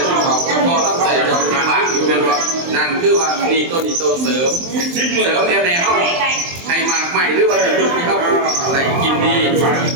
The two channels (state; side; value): late; left; 23 ms